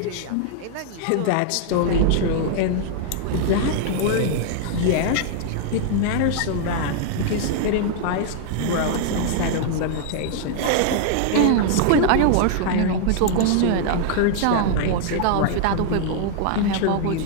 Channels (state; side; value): different; both; correlation 0.00